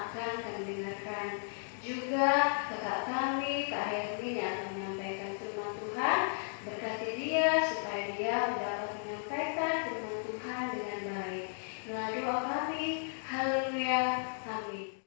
kami dengarkan. Juga kakak kami, Kak Hermin yang akan menyampaikan firman Tuhan, berkati dia supaya dia dapat menyampaikan firman Tuhan dengan baik. Inilah doa kami. Haleluya. Amin.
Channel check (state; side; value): silent; right; digital silence